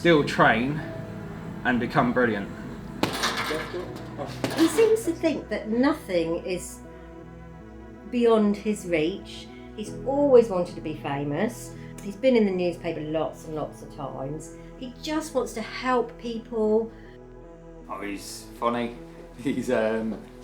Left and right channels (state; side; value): identical; both; correlation 1.00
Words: train and become brilliant. He seems to think that nothing is beyond his reach. He's always wanted to be famous. He's been in the newspaper lots and lots of times. He just wants to help people. Oh, he's funny. He's